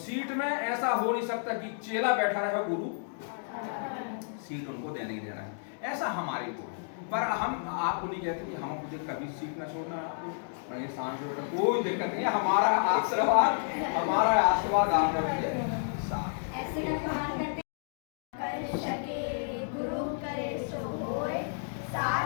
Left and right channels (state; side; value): silent; right; digital silence